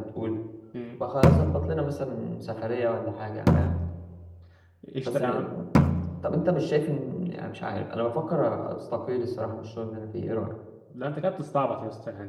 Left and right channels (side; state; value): both; identical; correlation 1.00